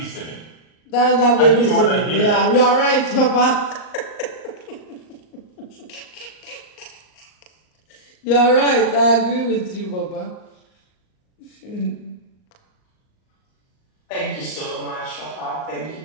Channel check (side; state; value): right; late; 38 ms